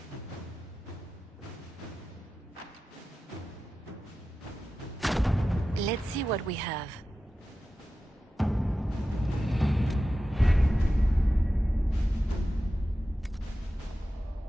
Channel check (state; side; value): normal; both; correlation 0.93